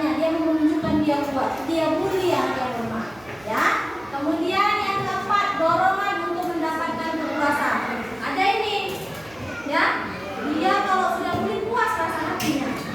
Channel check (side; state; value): right; noise; hum, 25 dB below the sound